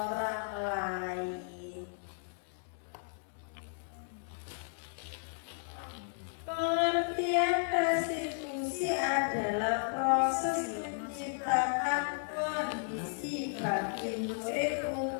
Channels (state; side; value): silent; right; digital silence